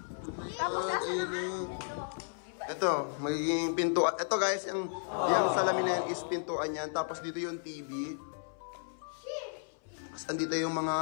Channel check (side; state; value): right; silent; 55 dB below the other